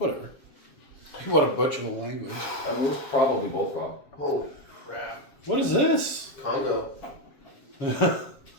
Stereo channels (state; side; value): late; right; 7.5 ms